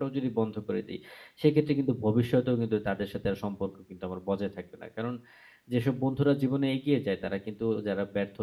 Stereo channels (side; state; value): both; identical; correlation 1.00